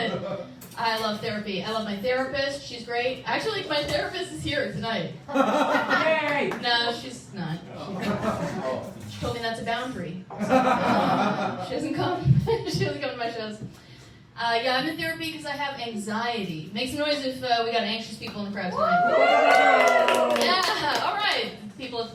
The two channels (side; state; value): both; identical; correlation 1.00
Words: I love therapy. I love my therapist. She's great. Actually, my therapist is here tonight. Yay! No, she's not. She told me that's a boundary. She doesn't come. She doesn't come to my shows. Yeah, I'm in therapy because I have anxiety. Make some noise if we got anxious people in the crowd tonight. Yeah, all right. People at the